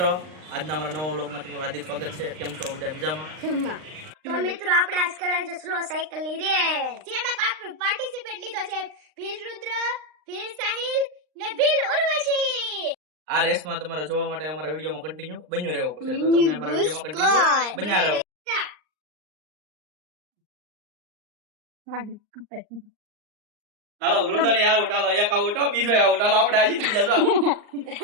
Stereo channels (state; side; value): late; left; 39 ms